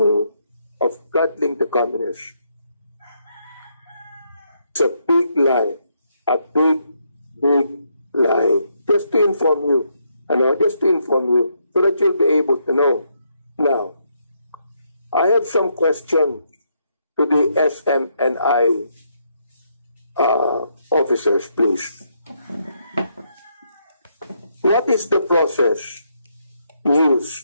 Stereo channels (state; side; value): inverted; both; correlation -0.76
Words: of coddling the communists, it's a big lie, a big, big lie. Just to inform you, so that you'll be able to know. Now, I have some questions to the SMNI officers, please. What is the process